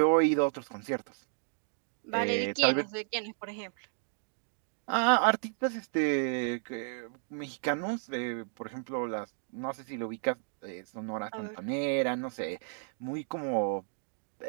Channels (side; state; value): left; silent; digital silence